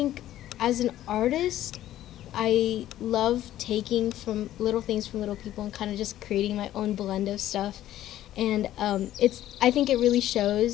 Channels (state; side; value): quieter; right; 13.1 dB